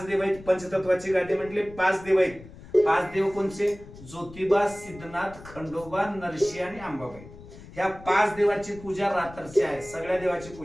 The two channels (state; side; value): noise; left; rumble, 18 dB below the sound